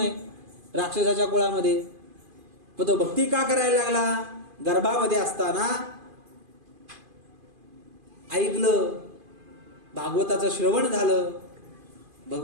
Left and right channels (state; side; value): late; left; 2.5 ms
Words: राक्षसाच्या कुळामध्ये. पण तो भक्ती का करायला लागला? गर्भामध्ये असताना ऐकलं, भागवताचं श्रवण झालं,